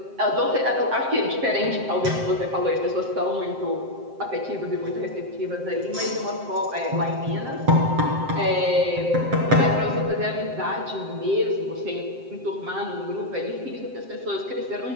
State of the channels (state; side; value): late; left; 7.6 ms